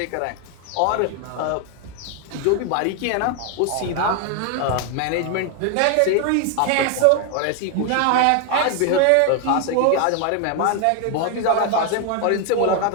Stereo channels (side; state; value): both; different; correlation 0.01